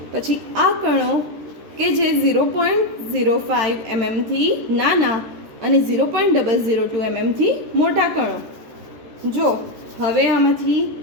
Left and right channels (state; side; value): late; left; 13 ms